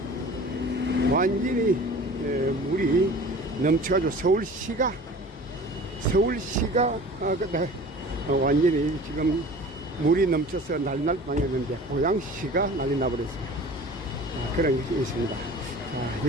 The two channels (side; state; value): both; normal; correlation 0.42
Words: 완전히 물이 넘쳐가지고 서울시가 완전히 지금 물이 넘쳐서 난리날 뻔했는데 고양시가 난리 나버렸어요. 그런 것이 있습니다. 자,